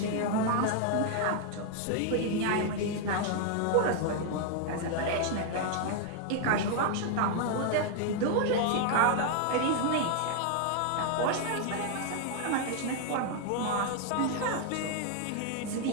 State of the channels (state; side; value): different; both; correlation 0.00